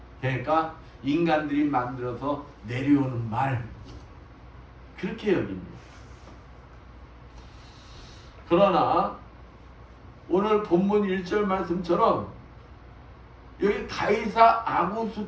그러니까 인간들이 만들어서 내려오는 말 그렇게 여깁니다. 그러나 오늘 본문 1절 말씀처럼 여기 가이사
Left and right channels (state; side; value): identical; both; correlation 1.00